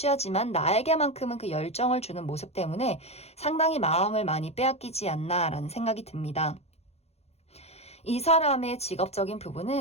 나에게만큼은 그 열정을 주는 모습 때문에 상당히 마음을 많이 빼앗기지 않나라는 생각이 듭니다. 이 사람의 직업적인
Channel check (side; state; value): right; late; 0.31 ms